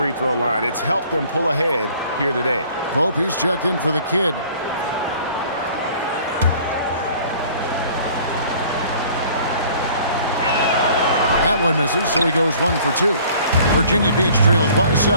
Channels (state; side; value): inverted; both; correlation -0.52